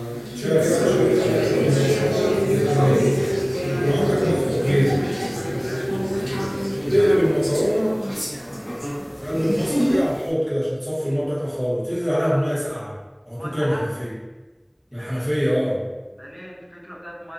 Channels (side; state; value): both; identical; correlation 1.00